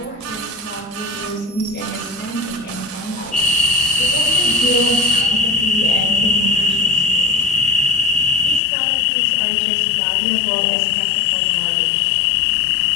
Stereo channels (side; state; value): right; drops out; at 8.6 s